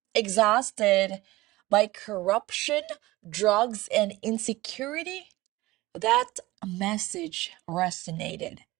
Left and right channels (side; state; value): left; quieter; 19.1 dB